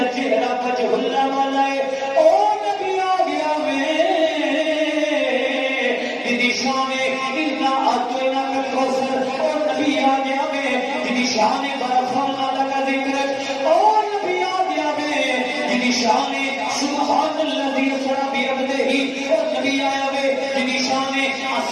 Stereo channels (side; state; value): both; identical; correlation 1.00